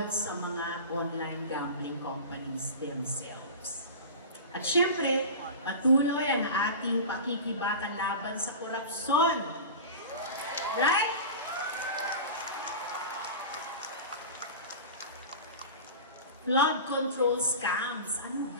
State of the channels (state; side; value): inverted; both; correlation -0.30